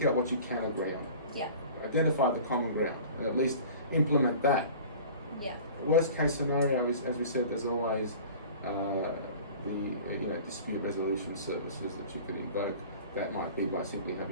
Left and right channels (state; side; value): inverted; both; correlation -0.42